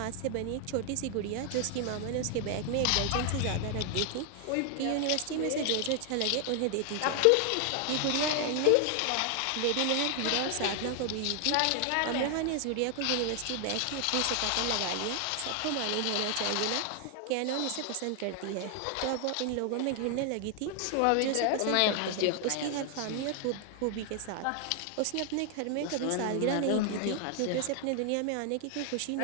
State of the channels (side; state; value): both; different; correlation 0.00